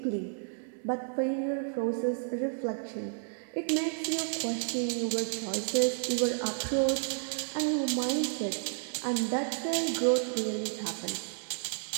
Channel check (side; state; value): left; silent; 57 dB below the other